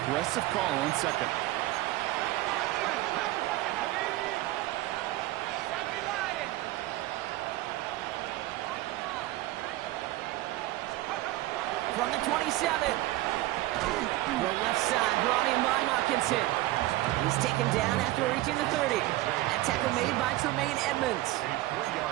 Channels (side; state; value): left; quieter; 17.2 dB